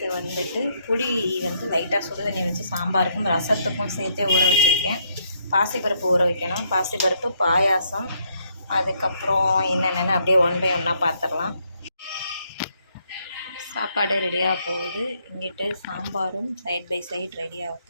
புளி லைட்டாக சுடு தண்ணி வச்சு சாம்பாருக்கும் ரசத்துக்கும் சேர்த்தே ஊற வச்சுருக்கேன். பாசிப்பருப்பு ஊற வைக்கணும். பாசிப்பருப்பு, பாயாசம், அதுக்கப்புறம் என்னென்னு அப்படியே ஒன் பை ஒன்னாக பார்த்துடலாம். சாப்பாடு ரெடியாக போகுது. இங்கிட்டு சாம்பாரும் சைட் பை சைட் ரெடியாக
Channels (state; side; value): inverted; both; correlation -0.73